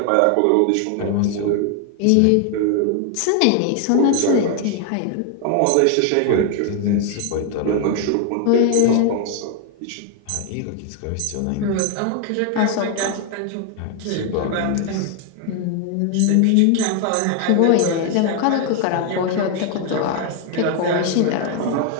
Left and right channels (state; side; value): different; both; correlation 0.00